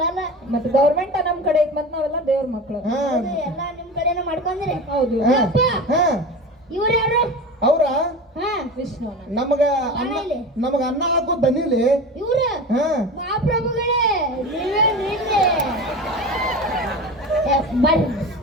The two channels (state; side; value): normal; both; correlation 0.30